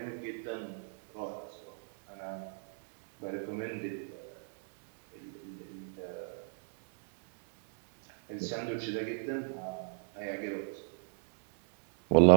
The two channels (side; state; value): left; silent; digital silence